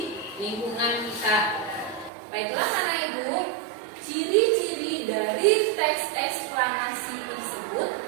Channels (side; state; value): left; drops out; at 2.1 s